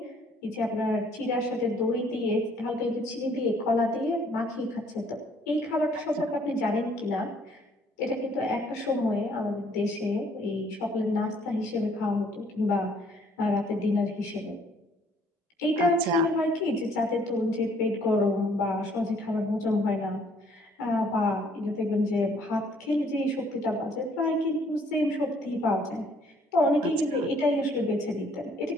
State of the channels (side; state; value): both; normal; correlation 0.62